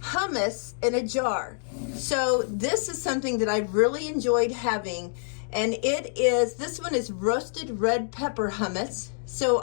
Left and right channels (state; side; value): silent; right; digital silence